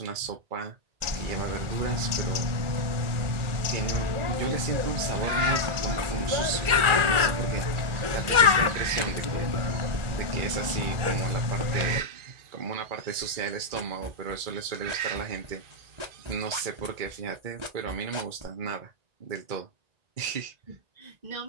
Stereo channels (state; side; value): late; left; 1.4 ms